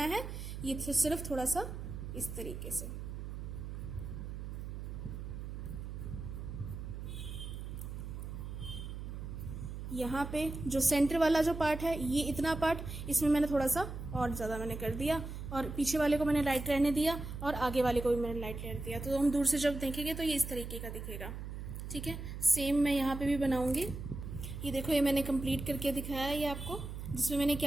है, ये सिर्फ थोड़ा सा इस तरीके से यहाँ पे जो सेंटर वाला जो पार्ट है, ये इतना पार्ट इसमें मैंने थोड़ा सा और ज़्यादा मैंने कर दिया और पीछे वाले को मैंने लाइट रहने दिया और आगे वाले को भी मैंने लाइट रहने दिया। तो हम दूर से जब देखेंगे तो ये इस तरीके का दिखेगा, ठीक है। सेम मैं यहाँ पे भी बनाऊंगी। ये देखो, ये मैंने कंप्लीट करके दिखाया है ये आपको, जिसमें मैंने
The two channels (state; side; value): noise; right; hum, 7 dB below the sound